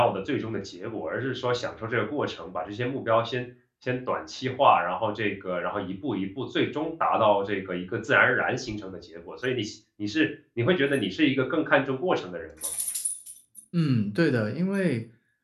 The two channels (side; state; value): both; identical; correlation 1.00